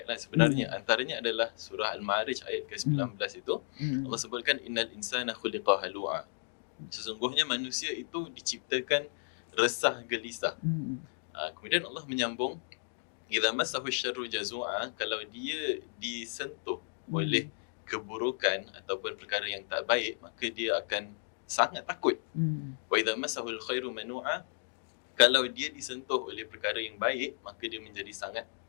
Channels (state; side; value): silent; right; digital silence